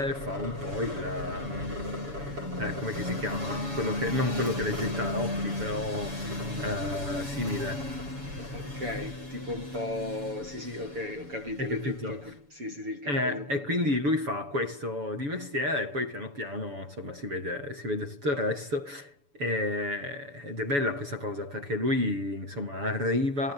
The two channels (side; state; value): left; late; 7.0 ms